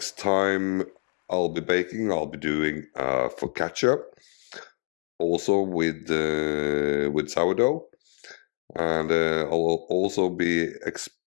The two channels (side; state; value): right; quieter; 39.3 dB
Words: time I'll be baking, I'll be doing focaccia, also with sourdough, and I'll also be